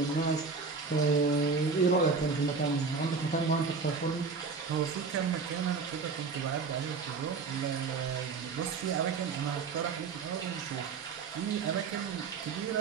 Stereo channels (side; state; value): left; quieter; 4.8 dB